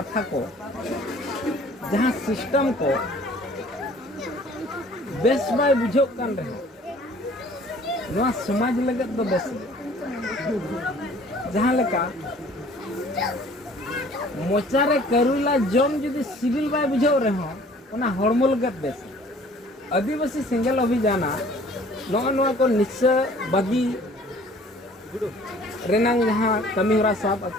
को जहाँ सिस्टम को बेस बाय बुझो कान रहे नवा समाज लगत दो बेस जहाँ लेका मोचारे करुला जम जुदी सिविल बाय बुझो रहे ओना हड़मो लगत बेस आदिवासी सिंगल अभियान नवा को निश्चय बागी रेनांग जहाँ कमी होरा साब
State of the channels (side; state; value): both; normal; correlation 0.53